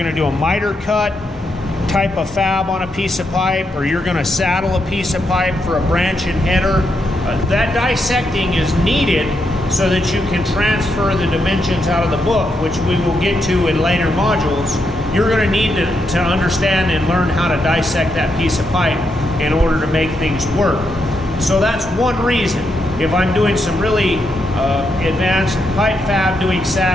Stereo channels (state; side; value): normal; both; correlation 0.81